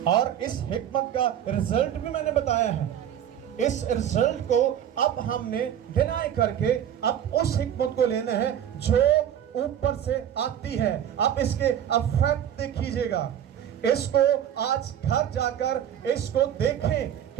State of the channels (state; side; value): quieter; left; 10.0 dB